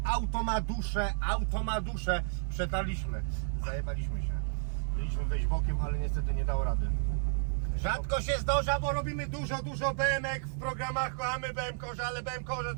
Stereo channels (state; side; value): silent; left; digital silence